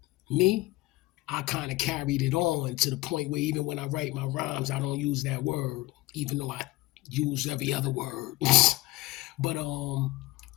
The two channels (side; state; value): right; quieter; 19.3 dB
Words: me, I kind of carried it on to the point where even when I write my rhymes, I don't use that word, even though I use every other word. But